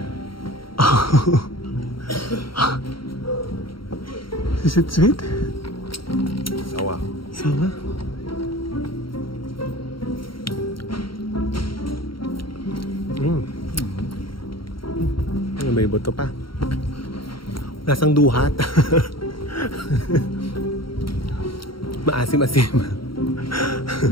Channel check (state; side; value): late; right; 0.73 ms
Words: Oh. Is it sweet? Sawa. Sawa? May buto pa. Nasang duhat. Maasim-asim.